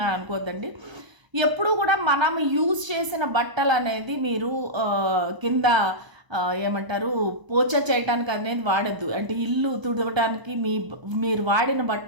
అనుకోవద్దండి. ఎప్పుడు కూడా మనం యూజ్ చేసిన బట్టలు అనేది మీరు కింద ఏమంటారు పోచ చేయటానికి అనేది వాడద్దు. అంటే ఇల్లు తుడవటానికి మీరు వాడిన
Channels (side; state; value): left; late; 1.0 ms